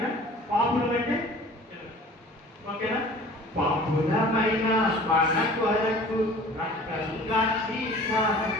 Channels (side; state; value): both; normal; correlation 0.45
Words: పాపులు అంటే ఓకేనా? పాపులమైన మన కొరకు రక్తంగా